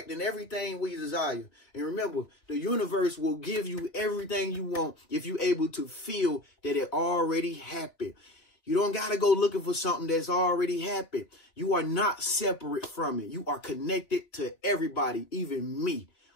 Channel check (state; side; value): late; right; 3.5 ms